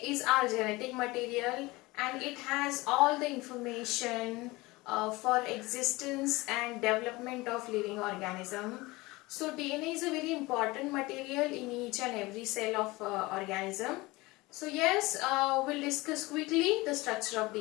is our genetic material and it has all the information for existence and development of living organism. So DNA is a very important material in each and every cell of organism. So yes, we'll discuss quickly the structure of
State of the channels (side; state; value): right; quieter; 21.8 dB